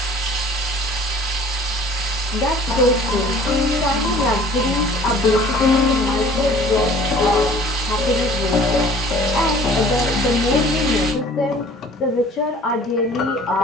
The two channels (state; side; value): normal; both; correlation 0.49